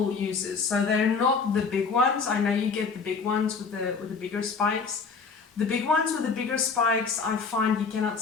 uses. So they're not the big ones. I know you get the big ones with the bigger spikes. The big ones with the bigger spikes, I find you cannot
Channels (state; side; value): quieter; right; 5.1 dB